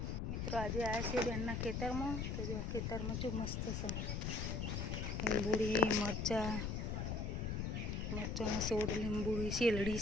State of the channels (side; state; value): left; noise; rumble, 1 dB below the sound